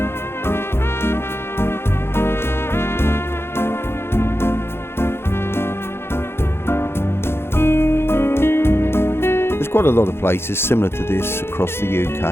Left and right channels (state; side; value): late; right; 0.12 ms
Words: Quite a lot of places similar to this across the